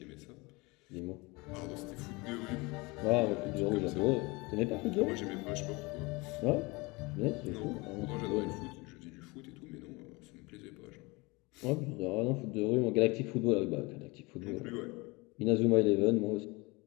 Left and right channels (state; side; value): quieter; right; 25.0 dB